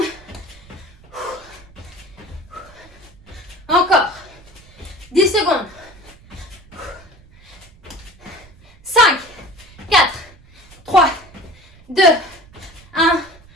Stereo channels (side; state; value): right; noise; rumble, 24 dB below the sound